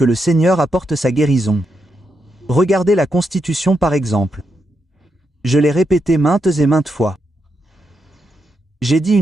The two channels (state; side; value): normal; both; correlation 0.83